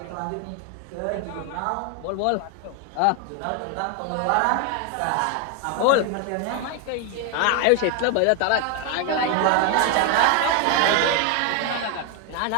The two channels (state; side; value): different; both; correlation 0.01